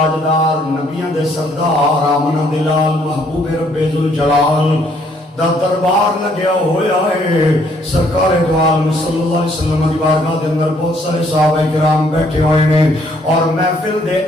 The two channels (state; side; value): normal; both; correlation 0.66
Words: نبیاں دے سردار آمنہ دلال محبوب رب ذوالجلال دا دربار لگیا ہویا ہے. سرکار دو عالم صلی اللہ علیہ وسلم دی بارگاہ دے اندر بہت سارے صحابہ کرام بیٹھے ہوئے نے اور محفل دے